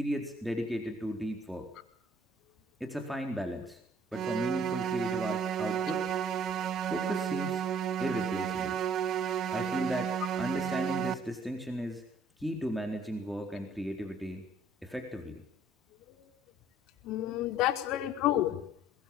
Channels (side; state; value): both; normal; correlation 0.58